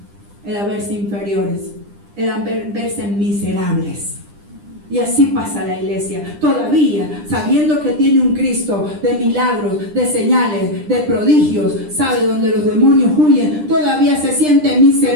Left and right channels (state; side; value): late; left; 9.9 ms